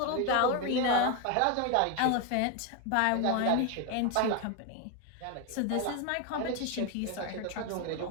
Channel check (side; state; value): both; different; correlation 0.01